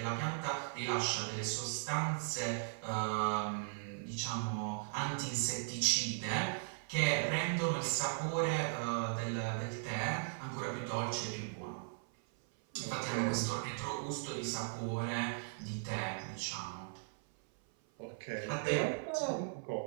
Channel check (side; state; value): left; silent; 53 dB below the other